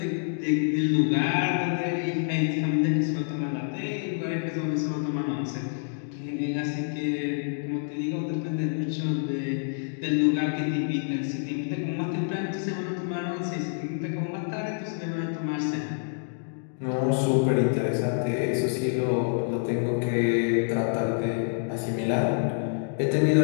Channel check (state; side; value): silent; right; digital silence